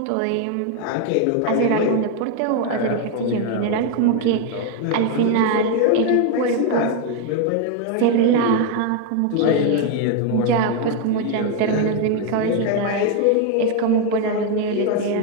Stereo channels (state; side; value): different; both; correlation 0.01